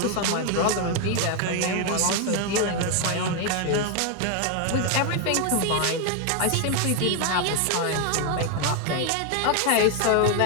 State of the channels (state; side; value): different; both; correlation 0.01